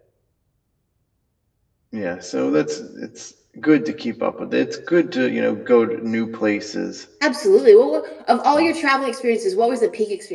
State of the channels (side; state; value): both; identical; correlation 1.00